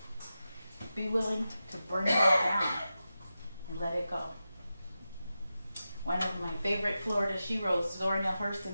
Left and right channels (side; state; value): both; inverted; correlation -0.92